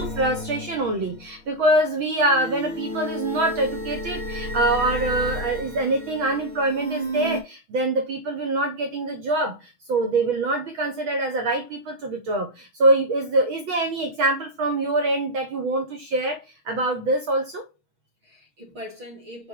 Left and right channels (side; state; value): left; late; 6.2 ms